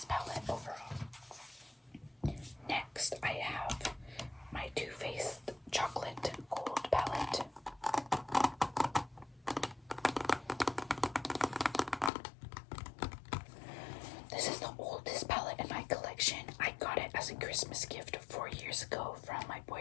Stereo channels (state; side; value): drops out; right; at 12.1 s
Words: palette overall. Next, I have my Too Faced Chocolate Gold palette. This is the oldest palette in my collection. I got it as a Christmas gift 4 years ago from my